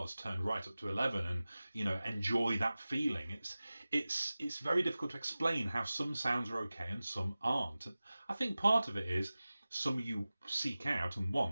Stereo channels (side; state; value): both; inverted; correlation -0.97